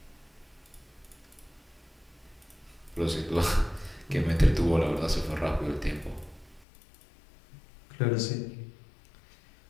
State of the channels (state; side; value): drops out; right; at 6.7 s